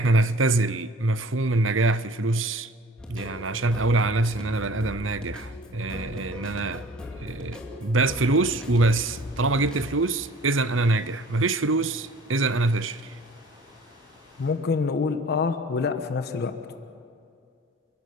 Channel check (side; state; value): both; normal; correlation 0.47